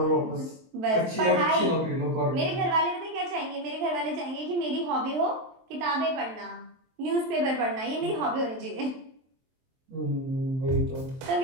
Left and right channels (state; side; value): late; left; 23 ms